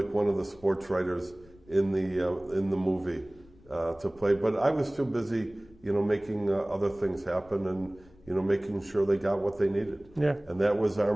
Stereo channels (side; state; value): left; noise; rumble, 26 dB below the sound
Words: one of the sports writers in the movie to play. But I was too busy, you know, making other things happen, and making sure they got what they needed. Yeah. And that was our